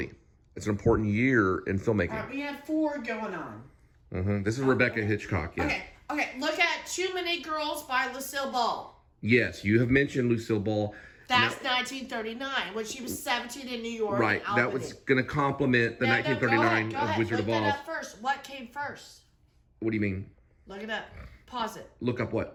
It's an important year in filmmaking. All right, we have 4 going on. This is Rebecca Hitchcock, yeah. Okay, look at Too Many Girls by Lucille Ball. Yes, you have mentioned Lucille Ball. That's 1939, when she was 17 in New York. Right, that was going to complement the 1939 of Wizard of Oz. Look that up first. What came first? What do you mean? Look it up. Pause it. Look up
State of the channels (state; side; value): identical; both; correlation 1.00